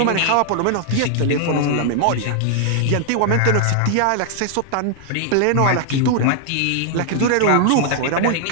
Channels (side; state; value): both; different; correlation -0.01